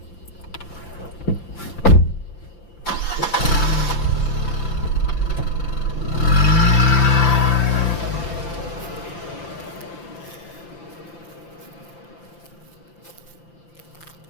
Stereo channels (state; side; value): late; right; 5.9 ms